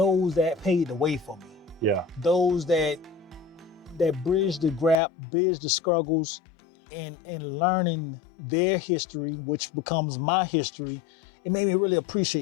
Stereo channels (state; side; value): drops out; right; at 5.0 s